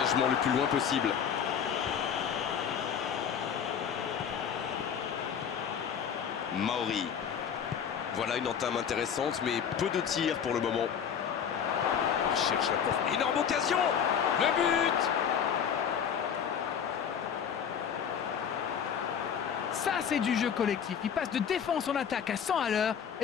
le plus loin possible. Maori. Voilà une entame intéressante, mais peu de tirs pour le moment. Il cherche la porte. Énorme occasion. Le but. Ça, c'est du jeu collectif. Il passe de défense en attaque à 100 à l'heure.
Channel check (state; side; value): quieter; right; 7.8 dB